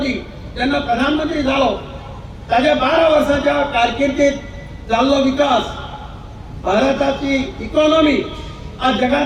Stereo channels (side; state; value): both; identical; correlation 1.00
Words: जेन्ना प्रधानमंत्री जालो ताच्या 12 वर्साच्या कारकिर्दीत जाल्लो विकास, भारताची इकॉनॉमी आज